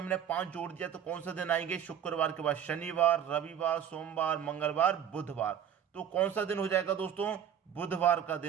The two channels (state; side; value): quieter; left; 9.0 dB